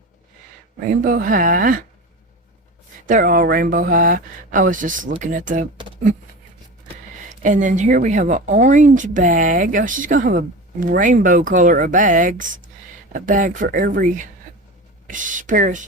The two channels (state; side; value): normal; both; correlation 0.30